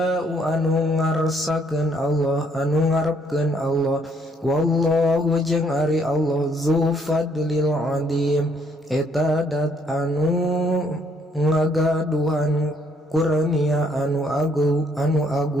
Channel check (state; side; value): normal; both; correlation 0.68